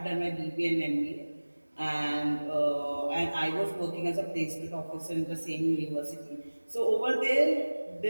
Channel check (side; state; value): both; inverted; correlation -1.00